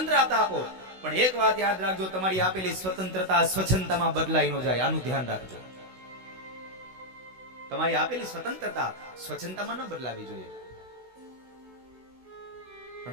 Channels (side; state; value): left; late; 16 ms